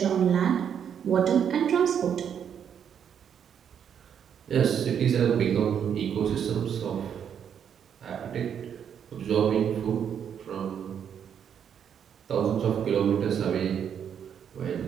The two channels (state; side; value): quieter; left; 8.3 dB